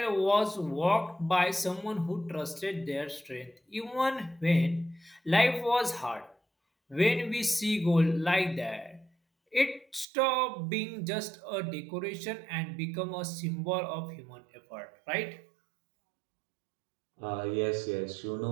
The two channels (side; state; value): left; drops out; at 10.1 s